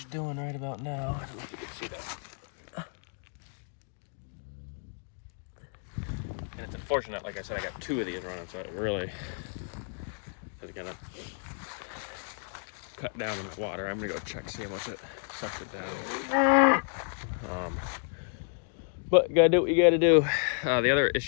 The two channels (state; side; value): silent; right; 57 dB below the other